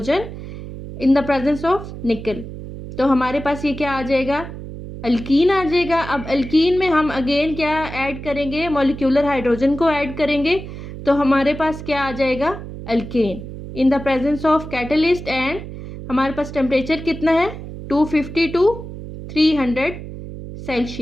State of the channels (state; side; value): noise; right; hum, 11 dB below the sound